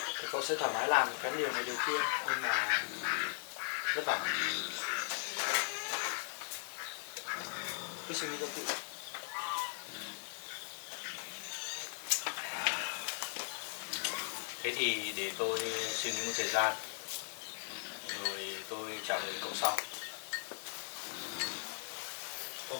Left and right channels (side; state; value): right; silent; 52 dB below the other